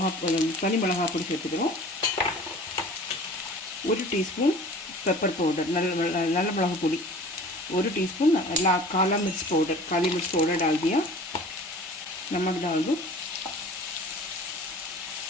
தனி மிளகாய் பொடி சேர்த்துக்கிறோம். 1 டீஸ்பூன் पेपर पाउडर नल मिளகு பொடி 1 टीस्पून काला मिर्च पाउडर डाल दिया। नमक डाल दो,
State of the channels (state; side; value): normal; both; correlation 0.44